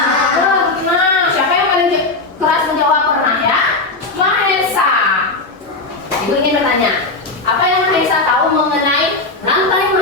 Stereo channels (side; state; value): right; quieter; 3.3 dB